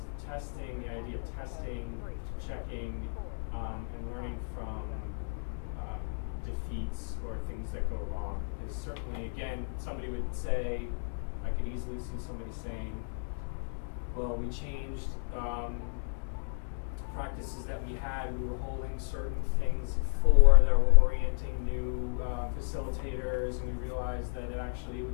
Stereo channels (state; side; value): silent; right; digital silence